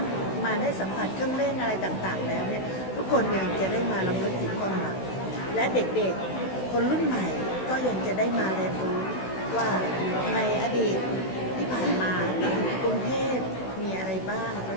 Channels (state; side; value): late; right; 16 ms